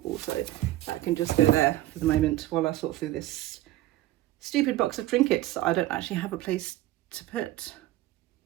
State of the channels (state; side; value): quieter; left; 15.4 dB